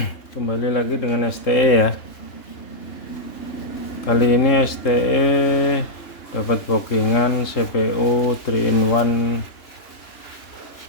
Kembali lagi dengan STE ya. Kali ini STE dapat bookingan CPU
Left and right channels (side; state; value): right; late; 3.7 ms